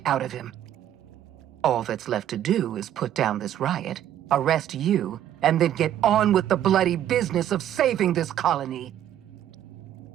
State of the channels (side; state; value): left; quieter; 11.2 dB